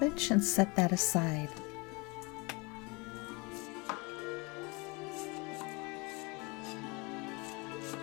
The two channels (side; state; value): right; quieter; 27.3 dB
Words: and set that aside.